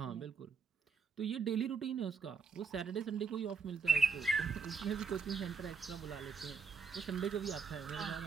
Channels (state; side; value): quieter; left; 5.0 dB